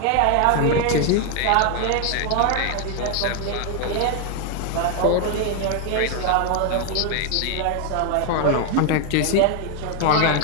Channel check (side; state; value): both; different; correlation 0.01